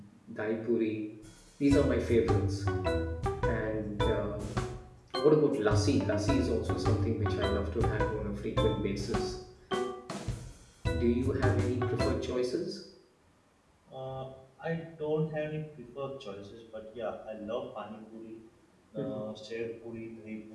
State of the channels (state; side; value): identical; both; correlation 1.00